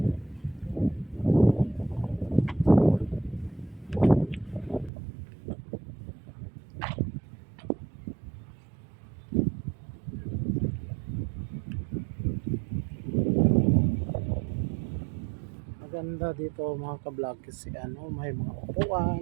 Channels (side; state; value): left; drops out; at 4.9 s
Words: Maganda dito mga kablog kasi may mga